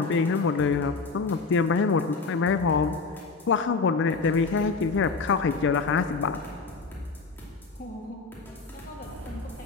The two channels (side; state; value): right; quieter; 4.4 dB